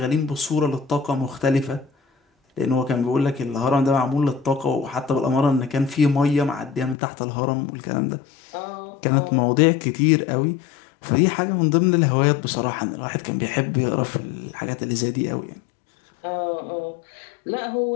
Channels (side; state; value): right; drops out; at 7.0 s